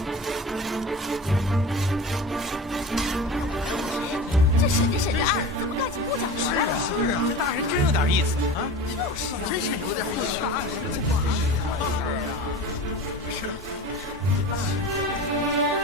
这审着审着案，怎么干起木匠活来了？是啊，这大人真有点意思啊！就是，真是有点意思。大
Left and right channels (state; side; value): normal; both; correlation 0.33